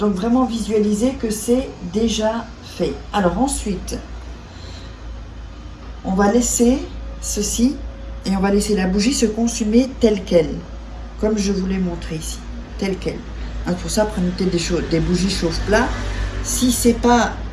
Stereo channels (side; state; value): both; identical; correlation 1.00